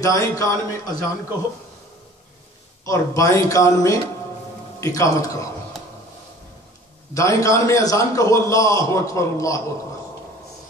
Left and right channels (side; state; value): both; normal; correlation 0.47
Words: دائیں کان میں اذان کہو اور بائیں کان میں اقامت کہو. دائیں کان میں اذان کہو اللہ اکبر اللہ اکبر